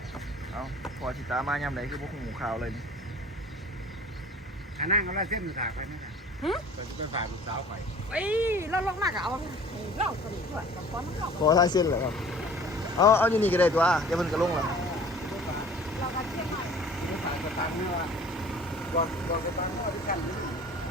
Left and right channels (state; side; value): normal; both; correlation 0.47